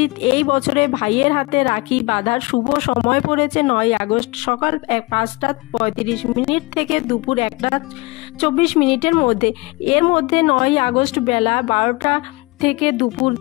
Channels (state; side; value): quieter; right; 24.6 dB